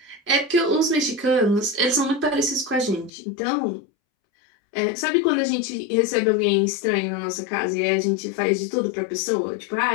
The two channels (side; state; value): right; drops out; at 3.1 s